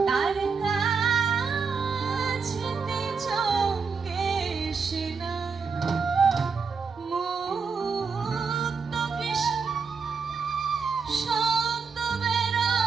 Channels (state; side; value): quieter; left; 5.3 dB